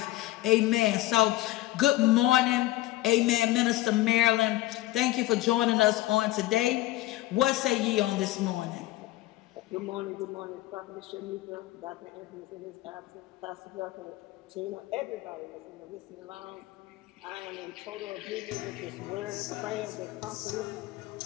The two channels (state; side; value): quieter; right; 17.1 dB